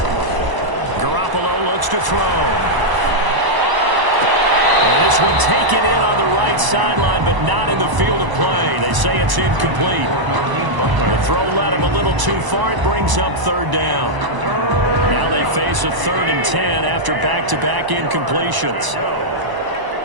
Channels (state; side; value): late; left; 1.0 ms